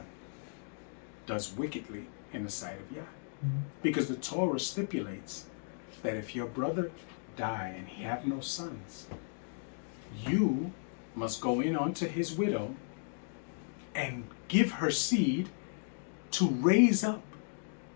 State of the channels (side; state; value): right; silent; digital silence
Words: does wickedly in the sight of Yah. Mm-hmm. Because the Torah stipulates that if your brother die and he have no sons, you must go in unto his widow and give her seed to raise up